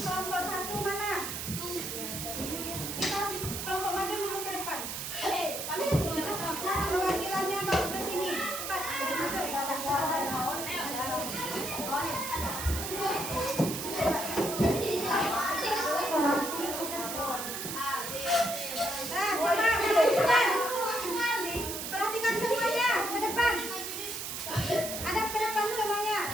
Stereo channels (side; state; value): right; noise; hiss, 5 dB below the sound